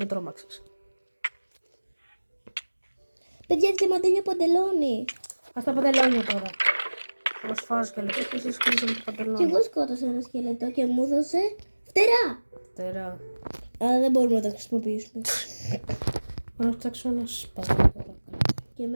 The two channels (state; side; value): inverted; both; correlation -1.00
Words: τρόμαξες. Παιδιά, διαμαντένιο παντελόνι. Ας τα παντελόνια τώρα. Εγώ σφάζω και λεπτό και εσείς κλείσαμε το Και παντελόνι. εγώ σκότωσα ένα σκελετό και μου έδωσε φτερά. Τερά. Αλλά δεν μπορούμε να τα χρησιμοποιήσουμε. Να φτιάξω ένα σπαθί τώρα. Και